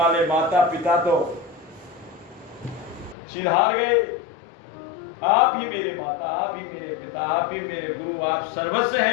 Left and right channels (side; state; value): right; drops out; at 3.2 s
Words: माता पिता तो सिधार गए, आप ही मेरे माता, आप ही मेरे पिता, आप ही मेरे गुरु, आप सर्वस्व